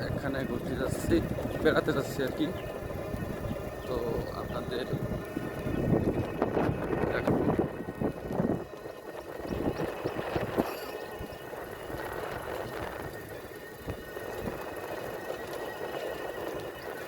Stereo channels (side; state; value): both; identical; correlation 1.00